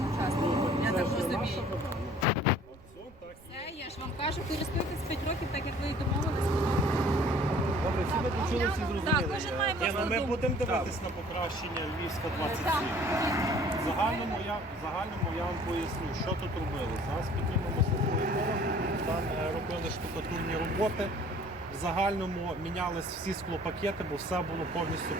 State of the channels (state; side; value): noise; right; rumble, 24 dB below the sound